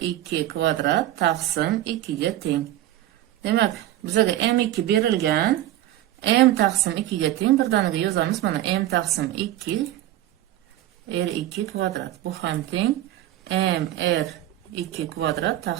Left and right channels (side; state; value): left; quieter; 13.9 dB